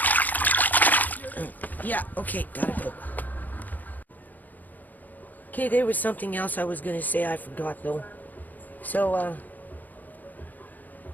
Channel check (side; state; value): right; late; 0.083 ms